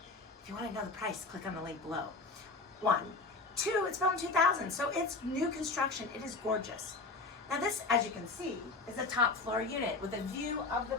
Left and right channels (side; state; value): right; quieter; 3.8 dB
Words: If you want to know the price, click on the link below. 1. 2, it's built in 2000, so it's new construction. It is gorgeous. Now this, as you can see, is a top floor unit with a view of the